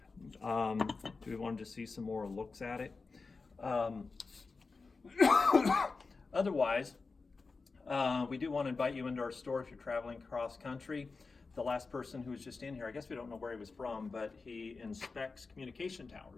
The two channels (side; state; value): right; quieter; 4.2 dB